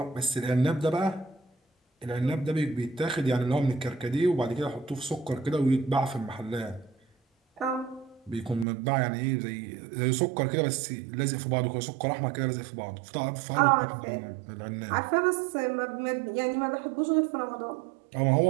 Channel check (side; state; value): left; drops out; at 8.7 s